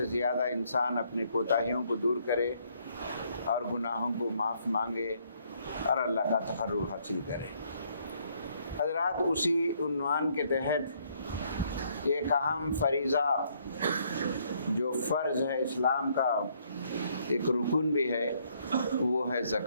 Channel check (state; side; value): inverted; both; correlation -0.68